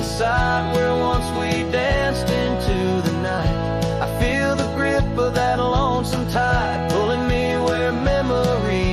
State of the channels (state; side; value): identical; both; correlation 1.00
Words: site, where once we danced into the night, I feel the grip of that lonesome tide, pulling me where